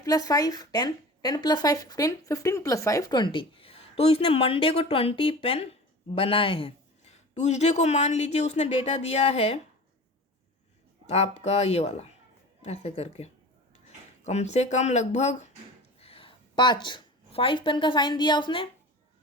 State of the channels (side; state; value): both; normal; correlation 0.36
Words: 5 10, 10 + 5 15, 15 + 5 20। तो इसने मंडे को 20 पेन बनाए हैं। ट्यूसडे को मान लीजिए उसने डेटा दिया है आपका ये वाला, ऐसे करके कम से कम लगभग 5 पेन का साइन दिया उसने।